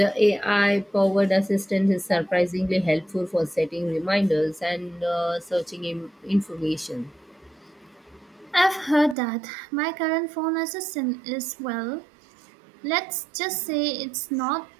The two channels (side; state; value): left; drops out; at 9.2 s